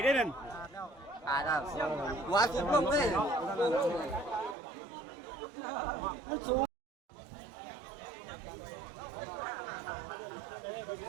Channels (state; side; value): drops out; left; at 4.5 s